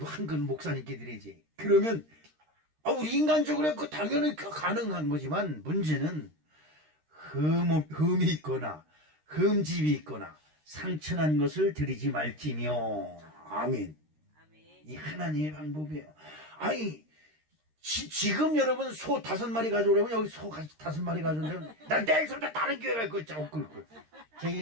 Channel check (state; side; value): late; left; 13 ms